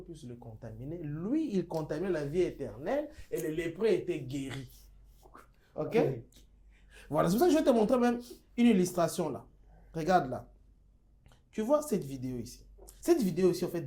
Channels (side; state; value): both; identical; correlation 1.00